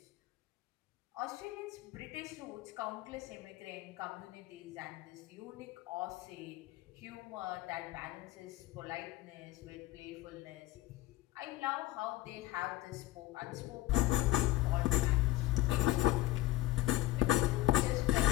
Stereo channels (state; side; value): quieter; right; 17.4 dB